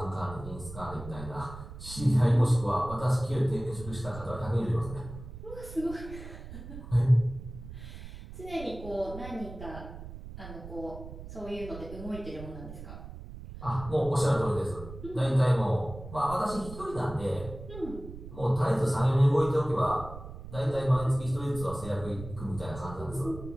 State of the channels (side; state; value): right; noise; rumble, 12 dB below the sound